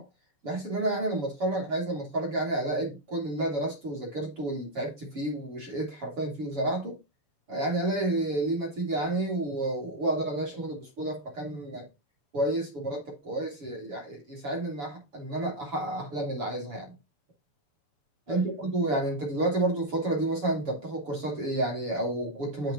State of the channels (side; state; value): left; late; 7.0 ms